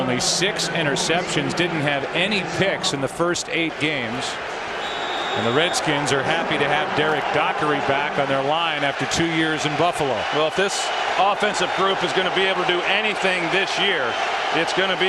6 interceptions. Didn't have any picks in the first 8 games. And the Redskins are happy to have Derek Dockery back on their line after 2 years in Buffalo. Well, if this offensive group is going to be able to do anything this year, it's going to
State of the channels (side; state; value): both; identical; correlation 1.00